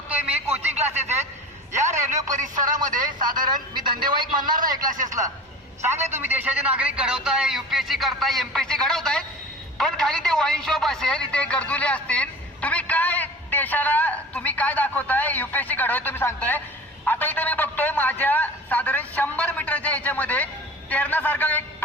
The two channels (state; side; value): normal; both; correlation 0.37